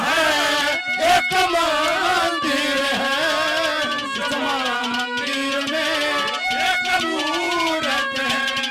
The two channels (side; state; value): both; identical; correlation 1.00